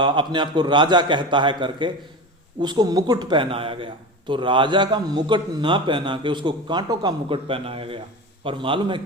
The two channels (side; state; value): both; normal; correlation 0.27